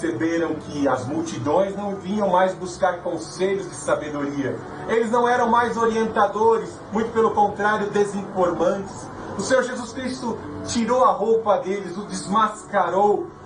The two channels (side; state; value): both; identical; correlation 1.00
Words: que as multidões não vinham mais buscar conselhos de sabedoria. Eles não eram mais orientadores, muito pelo contrário, desinformantes. O Senhor Jesus Cristo tirou a roupa deles, o desmascarou,